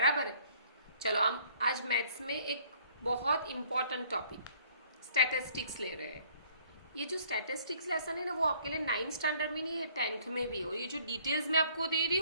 है। चलो, हम आज मैथ्स में एक बहुत इंपॉर्टेंट टॉपिक स्टैटिस्टिक्स ले रहे हैं। ये जो स्टैटिस्टिक्स लेसन है ना, वो आपके लिए 9th स्टैंडर्ड में नहीं है, 10th में भी हो। ये जो डिटेल्स मैं आपको दे रही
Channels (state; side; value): inverted; both; correlation -0.59